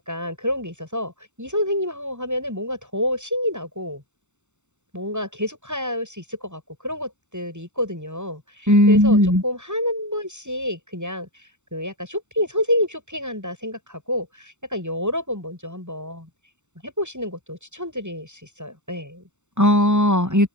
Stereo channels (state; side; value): late; left; 0.84 ms